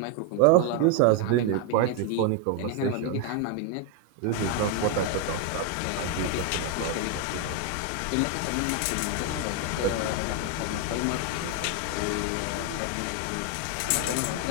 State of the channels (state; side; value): different; both; correlation 0.01